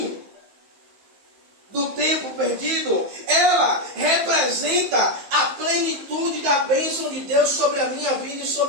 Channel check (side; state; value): left; late; 15 ms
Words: do tempo perdido. Ela representa a plenitude da bênção de Deus sobre a minha vida e